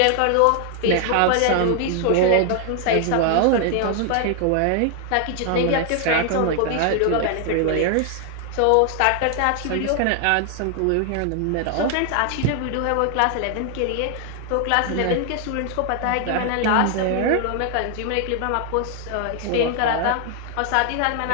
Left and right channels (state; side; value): different; both; correlation 0.00